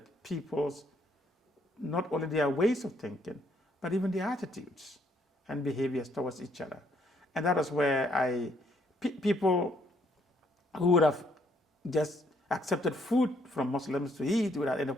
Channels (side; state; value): both; normal; correlation 0.69